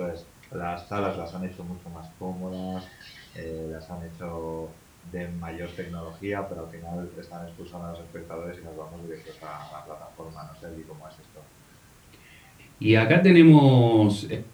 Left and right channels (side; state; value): both; identical; correlation 1.00